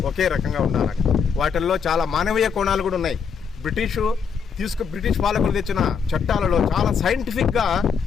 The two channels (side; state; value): right; quieter; 6.4 dB